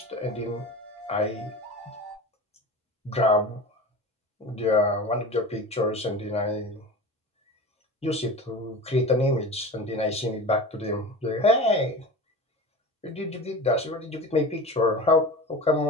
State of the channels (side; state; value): both; normal; correlation 0.32